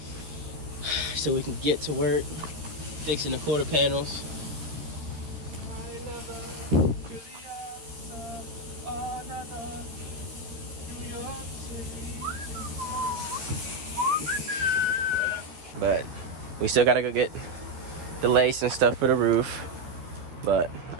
so we can get to work fixing the quarter panels. But we still gotta go get the lace and stuff for the roof. But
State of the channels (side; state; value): left; late; 13 ms